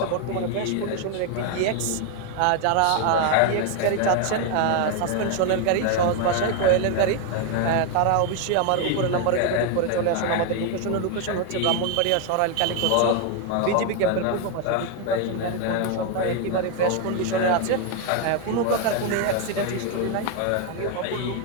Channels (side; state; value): both; different; correlation 0.01